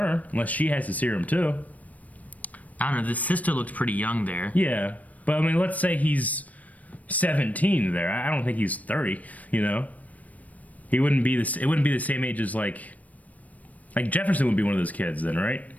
unless she has the serum too. I don't know, the sister looked pretty young there. Yeah, but I mean, let's say he's 17 there. I don't think he's 30, you know? He wouldn't be it wouldn't be the same age as like Jefferson would be one of those kids then, right?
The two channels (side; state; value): right; late; 0.071 ms